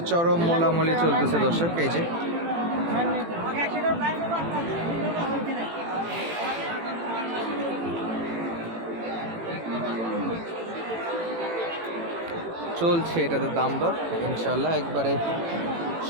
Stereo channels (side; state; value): left; late; 18 ms